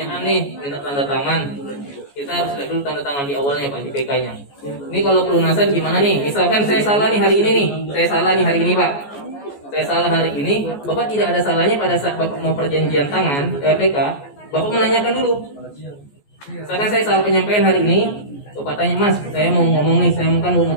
nih minta tanda tangan. Kita harus lihat dulu tanda tangan di awalnya Pak di PK-nya. Ini kalau pelunasan gimana nih? Misalkan saya salah nih hari ini nih. Saya salah nih hari ini Pak. Saya salah hari ini, Bapak tidak ada salahnya pada saat Bapak mau perjanjian tangan PK, Bapak menanyakan dulu. Misalkan saya salah penyampaian hari ini, Bapak tanya, Mas, saya mau ngomong nih, saya kan mau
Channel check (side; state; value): right; late; 14 ms